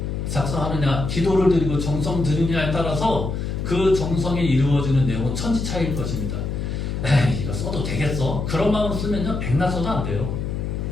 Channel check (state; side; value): noise; left; hum, 3 dB below the sound